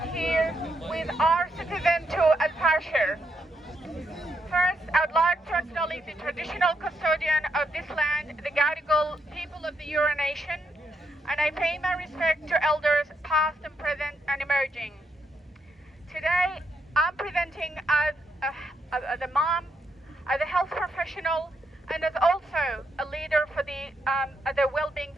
here with our citizen to El-Fasher. First, I'd like to acknowledge the traditional custodian of this land, the Gadigal people of the Eora Nation, and I pay my respect to elders past and present and emerging. Today, I'm presenting as a mom, as a health professional, and as also a leader for the well-being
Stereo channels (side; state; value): both; normal; correlation 0.79